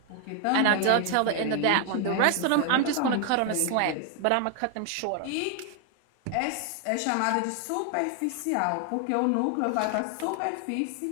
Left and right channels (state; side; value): different; both; correlation 0.00